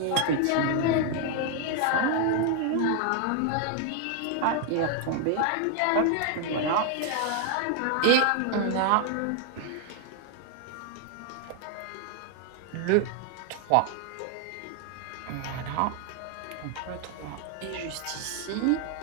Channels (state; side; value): different; both; correlation 0.00